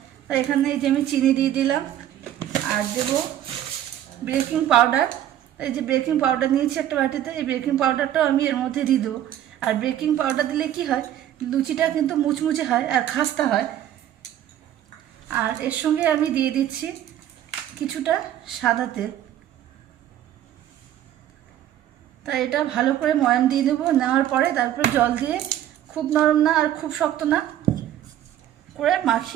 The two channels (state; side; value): quieter; left; 11.7 dB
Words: তাই এখানে এই যে আমি চিনি দিয়ে দিলাম। আর দেব বেকিং পাউডার। এই যে বেকিং পাউডার নিয়েছি একটা বাটিতে, এই বেকিং পাউডারটাও আমি এর মধ্যে দিয়ে দেবো। আর বেকিং পাউডার দিলে কি হয়, লুচিটা কিন্তু মুচমুচে হয় আর খাস্তা হয়। আর এর সঙ্গে আমি দিয়ে দিচ্ছি কিছুটা সাদা তেল। তাই এটা ভালো করে ময়াম দিয়ে দেবো। নেওয়ার পরে তারপরে জল দিয়ে খুব নরম না আর খুব শক্ত না করে